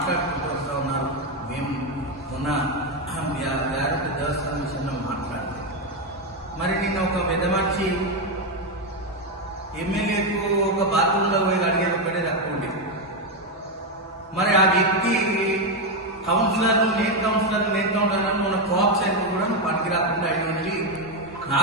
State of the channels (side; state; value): both; normal; correlation 0.07